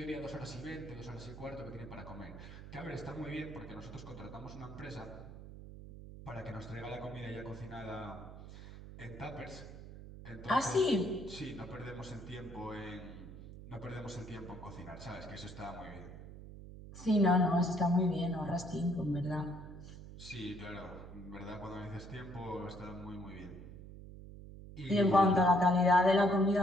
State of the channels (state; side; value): noise; right; hum, 14 dB below the sound